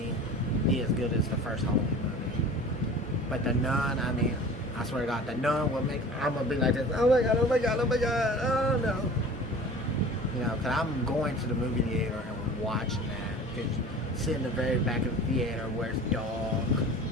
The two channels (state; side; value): normal; both; correlation 0.40